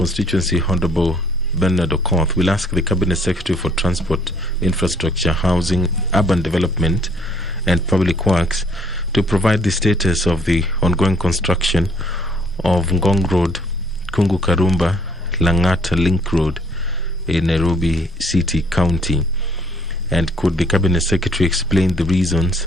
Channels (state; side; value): normal; both; correlation 0.63